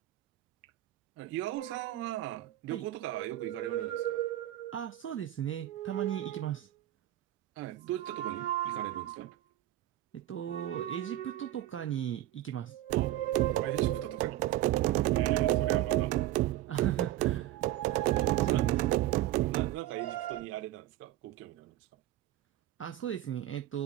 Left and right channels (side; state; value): left; quieter; 14.0 dB